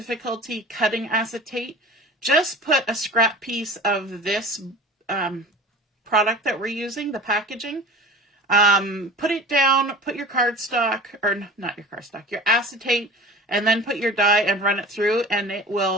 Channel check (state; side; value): normal; both; correlation 0.39